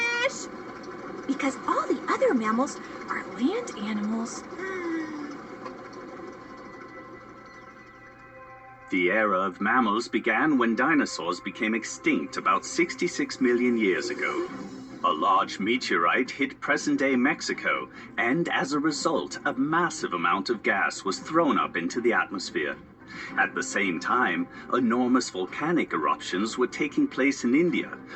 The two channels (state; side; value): identical; both; correlation 1.00